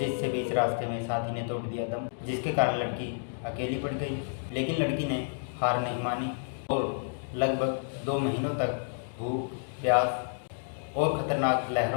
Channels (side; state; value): right; silent; digital silence